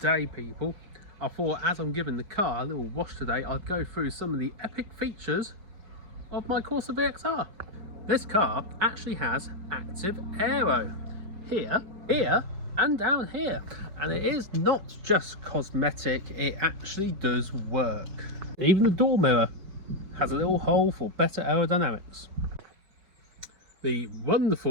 day, people. I thought as I'm giving the car a little wash today, I'd go through some of the epic features of my Corsa VXR. This car actually has active aero here, and down here. And it is not just cosmetic, it actually does work. Even the door mirror has a little hole for better aerodynamics. The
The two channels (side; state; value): left; late; 5.3 ms